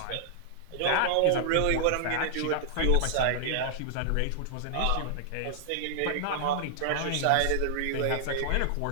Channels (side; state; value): both; different; correlation -0.01